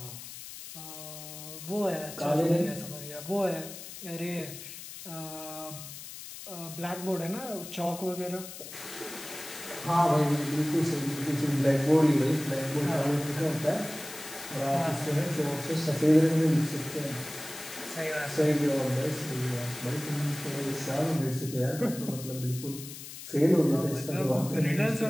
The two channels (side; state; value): left; noise; hiss, 12 dB below the sound